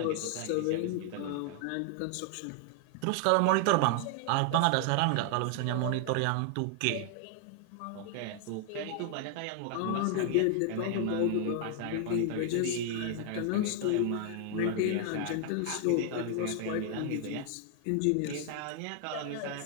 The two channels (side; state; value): both; different; correlation 0.00